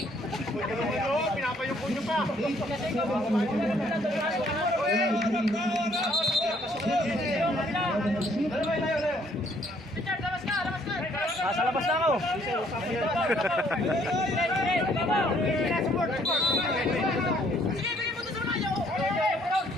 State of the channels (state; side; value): normal; both; correlation 0.65